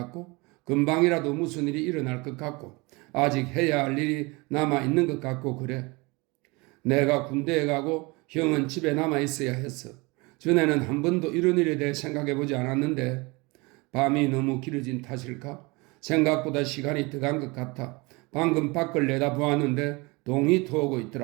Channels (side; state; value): left; quieter; 25.8 dB